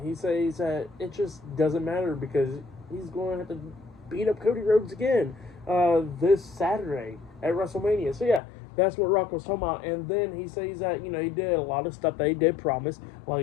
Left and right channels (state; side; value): drops out; right; at 8.4 s